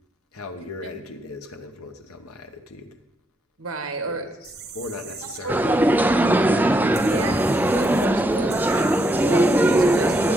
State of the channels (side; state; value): both; normal; correlation 0.78